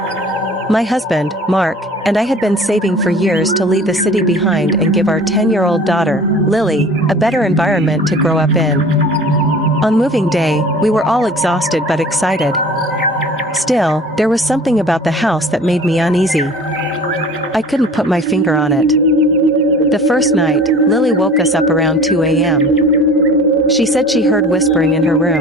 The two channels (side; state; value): both; normal; correlation 0.44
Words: My husband, Mark, and I had been saving for years to leave the city behind and give our 10-year-old daughter, Lily, a better environment to grow up in. On moving day, we were all exhausted but excited. Still, there was something about the house that made me uneasy. I couldn't put my finger on it. The first night, Lily woke us up around 2 a.m. She said she heard whispering in her